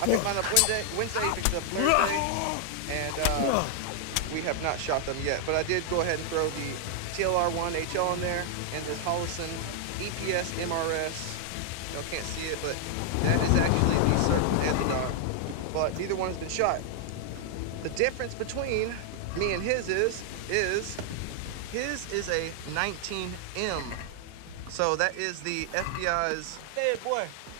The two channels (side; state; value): both; different; correlation 0.00